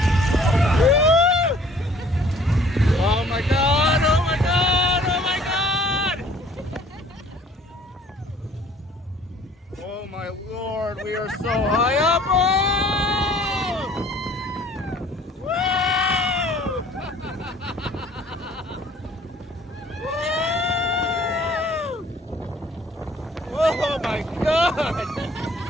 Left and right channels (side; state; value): both; normal; correlation 0.55